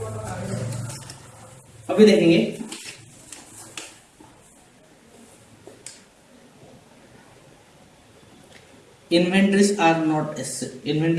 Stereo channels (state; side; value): identical; both; correlation 1.00